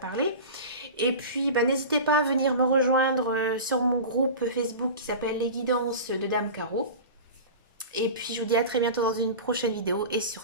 Et puis, bah, n'hésitez pas à venir me rejoindre sur mon groupe Facebook qui s'appelle Les Guidances de Dame Caro. Et puis, je vous dis à très bientôt dans une prochaine vidéo. Et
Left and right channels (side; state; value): both; inverted; correlation -0.32